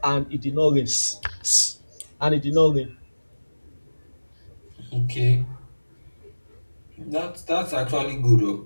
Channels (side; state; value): both; inverted; correlation -1.00